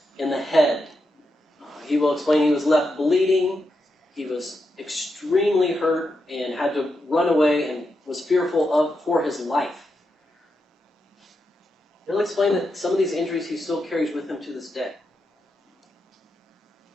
in the head. He will explain he was left bleeding, he was extremely hurt and had to run away and was fearful for his life. He'll explain that some of these injuries he still carries with him to this day.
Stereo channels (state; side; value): normal; both; correlation 0.85